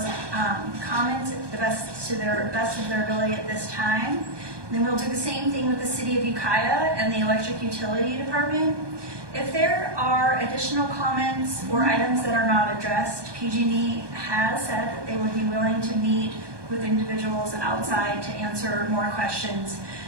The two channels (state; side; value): late; left; 1.2 ms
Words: comments to the best of their ability at this time. And then we'll do the same thing with the City of Ukiah and the Electric Utility Department. If there are additional comments or items that are not addressed, PG&E has said that they would be willing to meet with individuals outside to answer more questions.